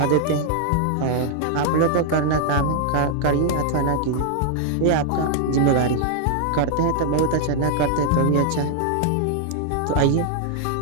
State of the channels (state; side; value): different; both; correlation -0.01